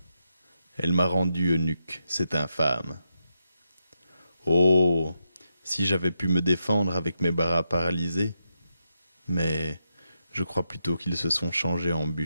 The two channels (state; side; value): inverted; both; correlation -0.85